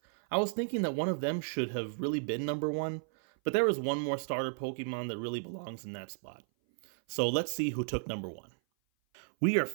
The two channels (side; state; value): left; silent; 55 dB below the other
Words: I was thinking that one of them should have really been number one, but there is one more starter Pokemon that really belongs in that spot. So let's see who took number one. We are